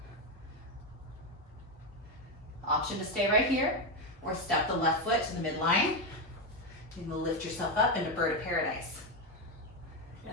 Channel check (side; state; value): both; normal; correlation 0.09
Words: Option to stay right here, or step the left foot to the midline. You can lift yourself up into bird of paradise. Good.